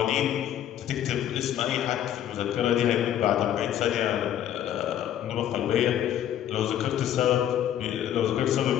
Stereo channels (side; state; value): right; quieter; 11.0 dB